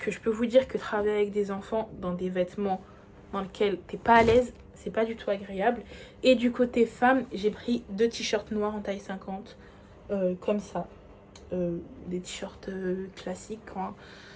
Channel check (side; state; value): both; identical; correlation 1.00